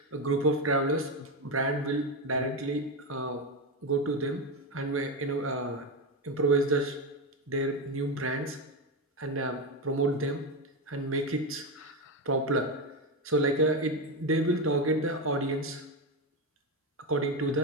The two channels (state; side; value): normal; both; correlation 0.12